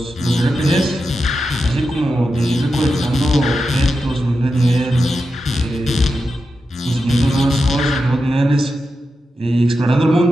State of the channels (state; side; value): normal; both; correlation 0.89